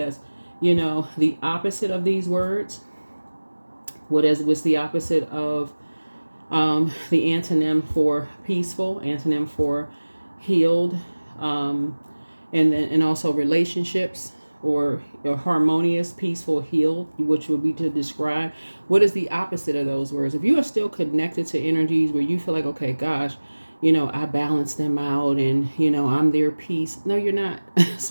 the opposite of these words, what's the opposite of the antonym for peaceful, antonym for healed, and also relationships, or harmonious, peaceful, healed, which would be to describe what is the opposite of those words. If you are still connected to energies where you feel like, okay, gosh, I balance them out and, I'm their peace. No, you're not.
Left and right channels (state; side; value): inverted; both; correlation -1.00